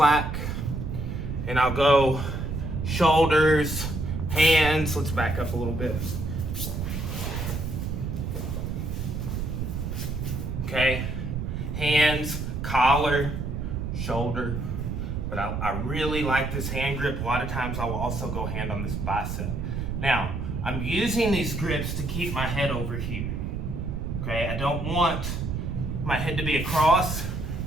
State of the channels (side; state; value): right; noise; rumble, 3 dB below the sound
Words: And I'll go shoulders, hands. Let's back up a little bit. Okay, hands, collar, shoulder. But I really like this hand grip. A lot of times I will also go hand on this bicep. Now, I'm using these grips to keep my head over here. Okay, I don't want my head to be across,